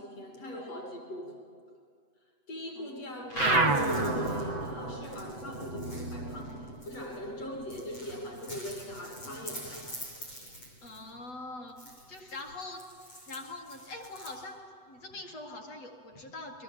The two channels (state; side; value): late; right; 8.0 ms